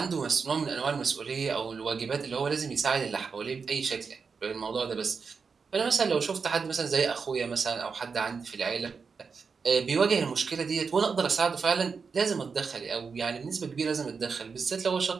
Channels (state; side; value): quieter; left; 5.4 dB